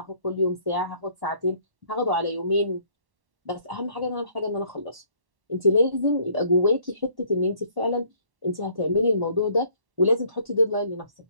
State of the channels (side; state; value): left; late; 1.1 ms